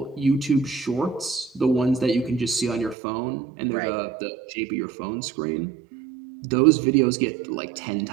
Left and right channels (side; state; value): left; drops out; at 3.0 s